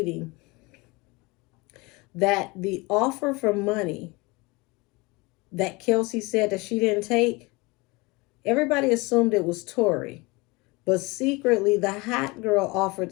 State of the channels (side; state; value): right; quieter; 25.1 dB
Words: that the offer for money that Kelsey said that she didn't take, everybody assumed it was Tori. But secretly, the hot girl offered